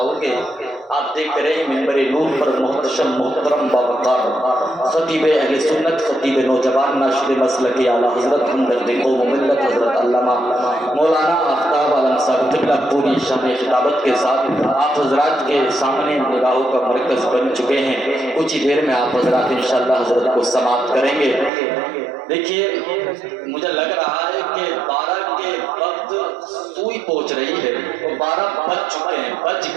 گے. آپ دیکھ رہے ہیں منبر نور پر محتشم محترم باوقار خطیب اہل سنت، خطیب نوجوان، ناشر مسلک اعلیٰ حضرت ہمدرد قوم و ملت حضرت علامہ مولانا آفتاب عالم صاحب قبلہ پوری شان خطابت کے ساتھ آپ حضرات کے سامنے نگاہوں کا مرکز بن چکے ہیں. کچھ ہی دیر میں آپ حضرات انشاءاللہ حضرت کو سماعت کریں گے. دیکھیے مجھے لگ رہا ہے کہ 12 کے وقت سوئی پہنچ رہی ہے اور 12 بج چکے ہیں، بج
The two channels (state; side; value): drops out; left; at 21.5 s